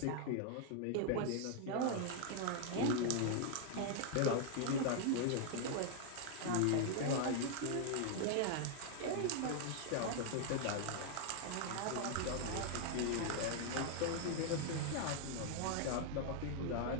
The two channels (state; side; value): different; both; correlation 0.00